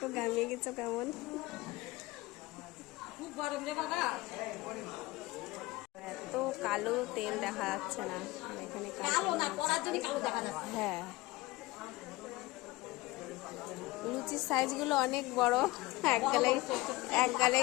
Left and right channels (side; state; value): right; quieter; 20.4 dB